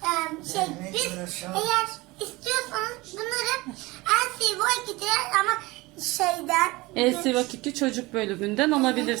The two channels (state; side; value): quieter; left; 21.9 dB